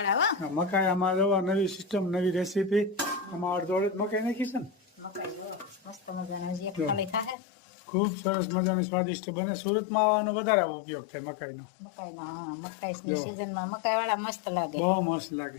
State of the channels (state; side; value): drops out; right; at 7.4 s